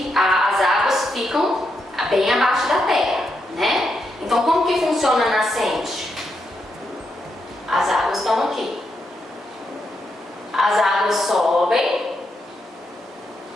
as águas ficam bem abaixo da terra, né? Então, como que funciona a nascente? As águas estão aqui. As águas sobem,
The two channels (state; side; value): normal; both; correlation 0.82